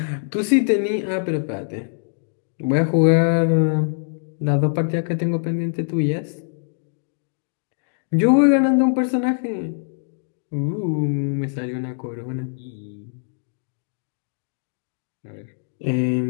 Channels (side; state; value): right; silent; digital silence